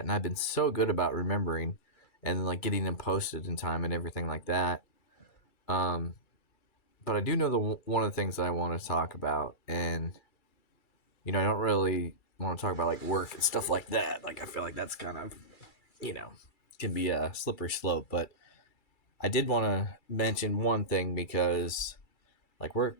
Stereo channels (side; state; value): right; late; 2.3 ms